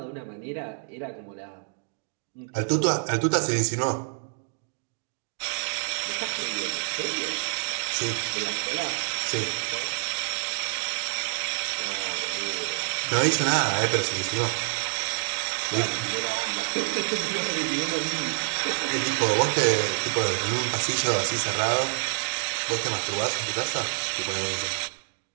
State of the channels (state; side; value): silent; left; digital silence